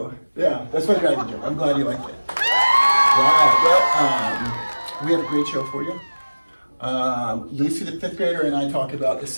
yeah, that's my dragon joke. I'm glad you liked it. Right, well, we have a great show for you. Lucy, the 5th grader, and I talk about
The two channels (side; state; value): both; inverted; correlation -1.00